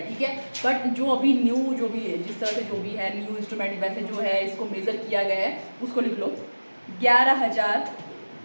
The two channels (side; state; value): both; inverted; correlation -1.00